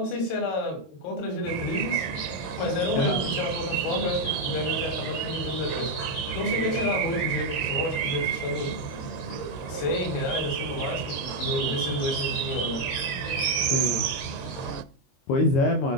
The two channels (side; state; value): right; late; 22 ms